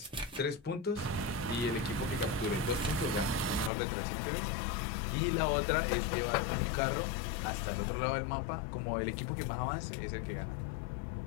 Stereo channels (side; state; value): right; drops out; at 3.7 s